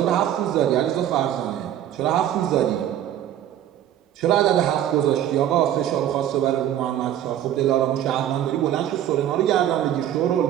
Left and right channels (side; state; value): left; quieter; 11.4 dB